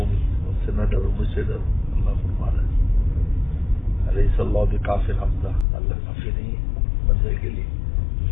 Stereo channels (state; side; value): drops out; right; at 5.7 s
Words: ان سے نہ ڈرو مجھ سے ڈرو، اللہ فرما رہا ہے علیہ اللہ بکافٍ عبدہ، اللہ کافی نہیں ہے بندے کے لیے۔